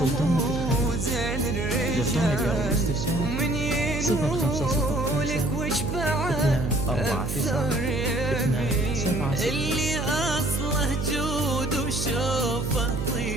وزين الرجال ومن ينولك وش بعد أكثر يبي اللي أصله جود وشوفه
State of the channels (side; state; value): right; noise; hum, 3 dB below the sound